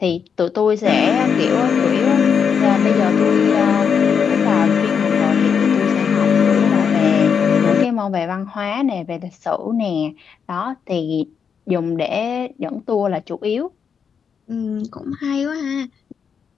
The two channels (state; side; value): quieter; right; 6.8 dB